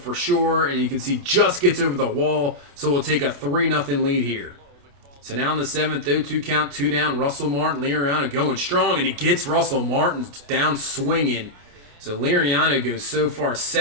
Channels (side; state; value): left; late; 28 ms